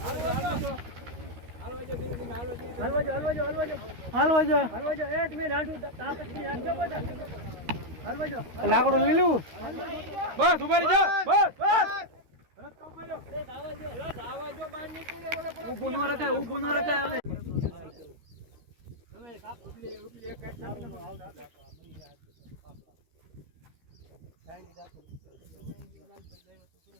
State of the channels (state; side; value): late; left; 13 ms